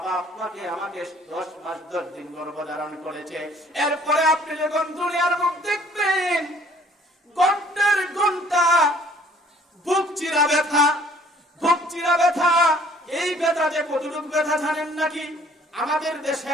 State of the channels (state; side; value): normal; both; correlation 0.57